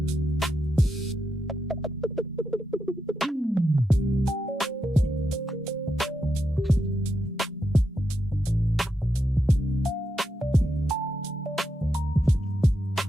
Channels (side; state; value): both; normal; correlation 0.84